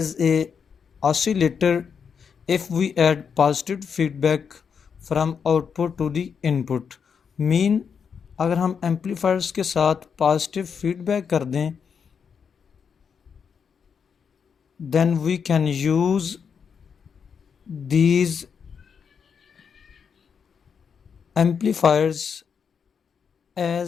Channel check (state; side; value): quieter; right; 6.6 dB